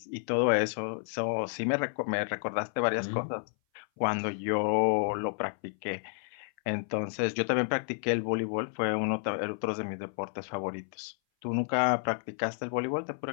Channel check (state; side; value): silent; right; 57 dB below the other